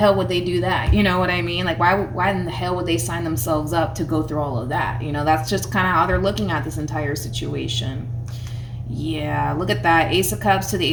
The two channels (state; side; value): identical; both; correlation 1.00